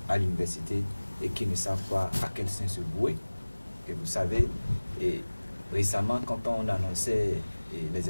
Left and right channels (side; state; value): both; inverted; correlation -1.00